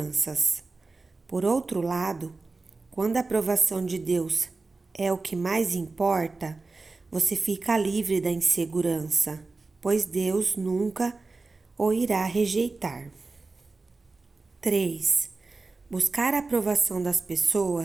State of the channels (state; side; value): quieter; left; 3.7 dB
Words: Por outro lado, quando a aprovação de Deus é o que mais importa, você fica livre da insegurança, pois Deus nunca o irá rejeitar. 3. Buscar a aprovação das